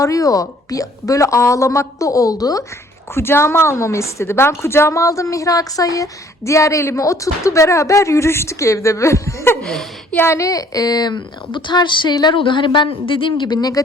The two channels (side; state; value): both; normal; correlation 0.58